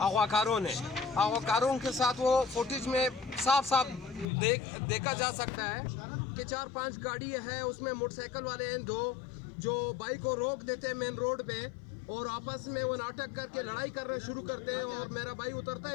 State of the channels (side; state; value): right; drops out; at 4.2 s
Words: کاروں نے. اغوا کاروں کے ساتھ وہ فوٹیج میں صاف صاف دیکھا جا سکتا ہے کہ 4-5 گاڑی ہے, اس میں موٹر سائیکل والے ہیں 2 جو بائک کو روک دیتے ہیں مین روڈ پہ اور آپس میں وہ ناٹک کر کے لڑائی کرنا شروع کرتے ہیں. اور میرا بھائی اترتا